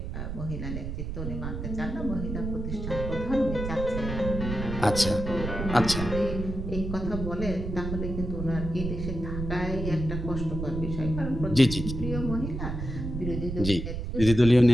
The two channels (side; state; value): right; noise; rumble, 5 dB below the sound